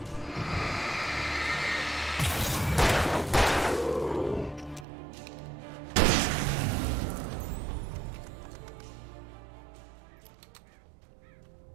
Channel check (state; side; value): drops out; left; at 4.9 s